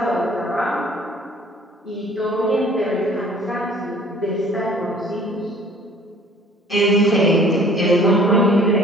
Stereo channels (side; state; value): both; normal; correlation 0.53